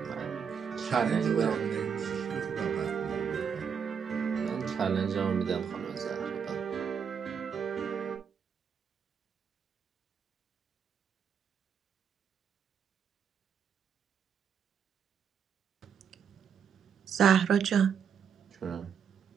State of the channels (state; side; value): quieter; left; 7.1 dB